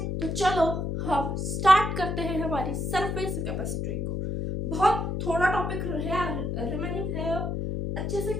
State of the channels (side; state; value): left; noise; hum, 2 dB below the sound